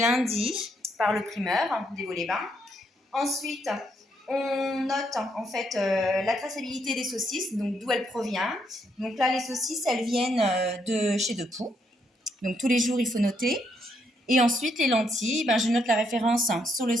par le primeur des Vaux-les-Bains. Ensuite, on note en fait la traçabilité des saucisses, donc d'où elles proviennent. Donc là, les saucisses, elles viennent de chez Depoux. Donc tous les jours, il faut noter. Et ensuite, les lentilles, ben, je note la référence sur le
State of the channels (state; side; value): normal; both; correlation 0.75